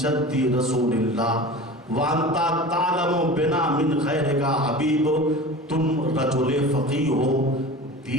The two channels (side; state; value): both; normal; correlation 0.35